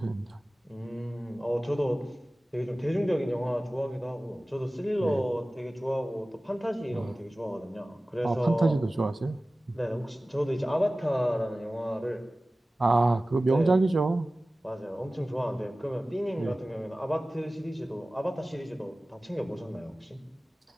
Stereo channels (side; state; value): both; normal; correlation 0.97